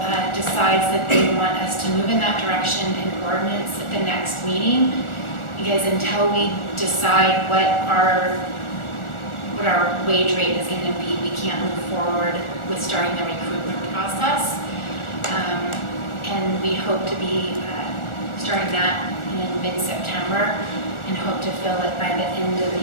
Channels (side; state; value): right; late; 1.4 ms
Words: decides that they want us to move in that direction in ordinance at the next meeting, because until we decide what our wage rate is going to be, we can't move forward with starting the recruitment process. And we hope to be starting that in mid-September and hope to fill it by the end of